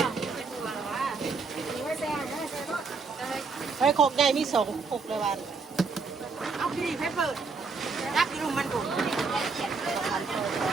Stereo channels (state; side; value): quieter; left; 4.6 dB